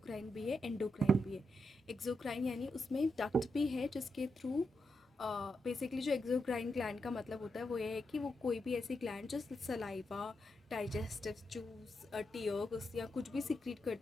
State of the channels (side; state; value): both; normal; correlation 0.85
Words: भी है endocrine भी है. exocrine यानी उसमें duct भी है जिसके थ्रू बेसिकली जो एक्सोक्राइन ग्लैंड का मतलब होता है वो ये है कि वो कोई भी ऐसी ग्लैंड जो सलाइवा, डाइजेस्टिव जूस, टीयर्स या कुछ भी सिक्रीट